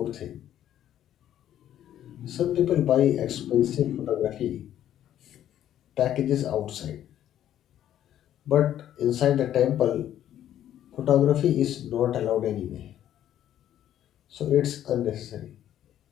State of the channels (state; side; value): quieter; right; 11.4 dB